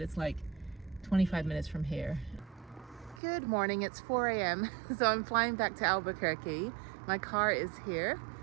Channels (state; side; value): drops out; left; at 3.2 s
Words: it's like 25 minutes from here. Good morning, it's 4 a.m. So I'm flying back to Albuquerque. My car is here.